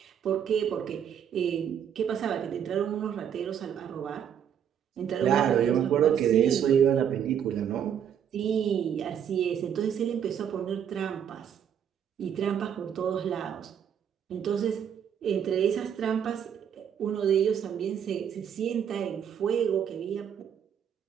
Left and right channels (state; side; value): quieter; left; 8.6 dB